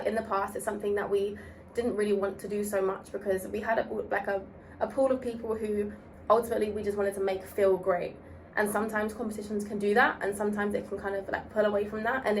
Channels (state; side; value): identical; both; correlation 1.00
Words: in the past, it's something that we didn't really want to do so much because we had a pool of people who ultimately we just wanted to make feel great. And sometimes competitions can do that, and sometimes it can kind of like pull away from that. And